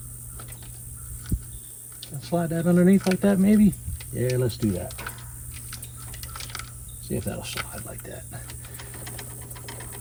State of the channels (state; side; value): identical; both; correlation 1.00